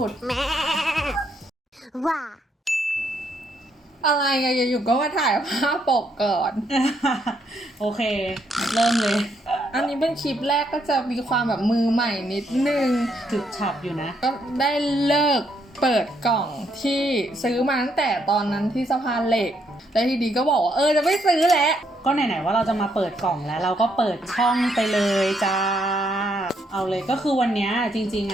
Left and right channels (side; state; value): both; normal; correlation 0.74